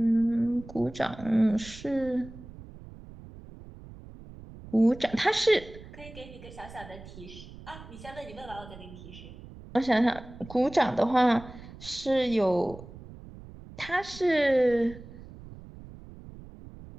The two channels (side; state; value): right; noise; rumble, 16 dB below the sound